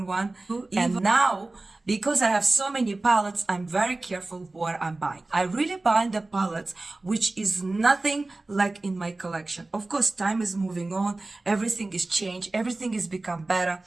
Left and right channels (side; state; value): left; quieter; 3.1 dB